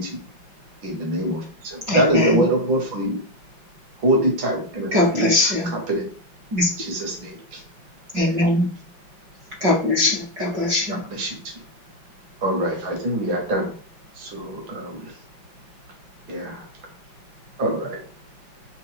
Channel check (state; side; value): late; left; 5.3 ms